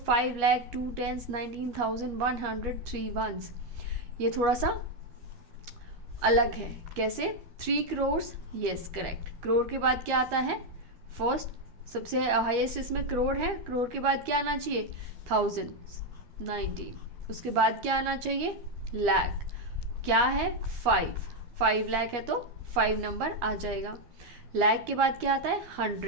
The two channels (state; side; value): late; left; 12 ms